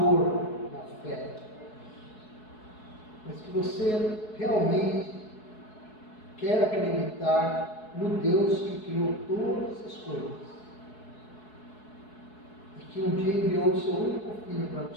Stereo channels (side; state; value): right; late; 4.7 ms